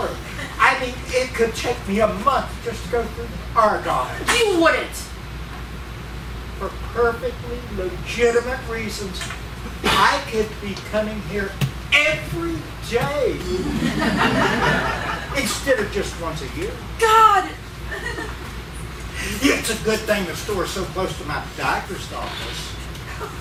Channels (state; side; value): identical; both; correlation 1.00